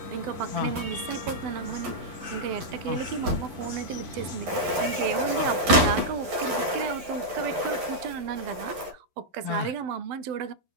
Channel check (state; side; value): late; left; 11 ms